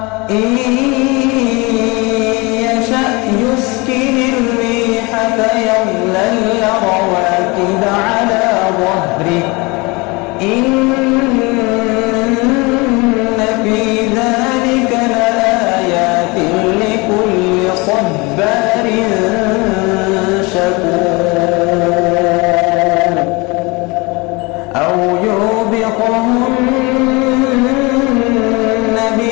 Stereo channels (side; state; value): right; quieter; 26.2 dB